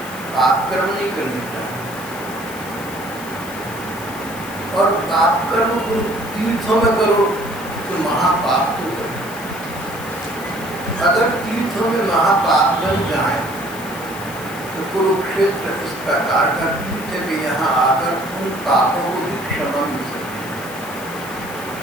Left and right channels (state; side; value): noise; left; hiss, 15 dB below the sound